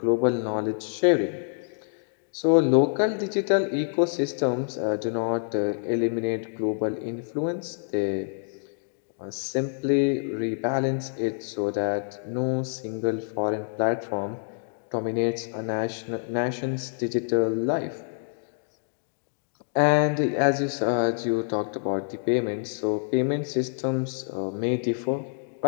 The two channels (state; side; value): silent; right; digital silence